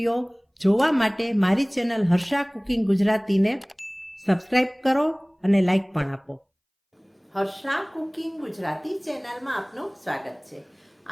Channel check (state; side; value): identical; both; correlation 1.00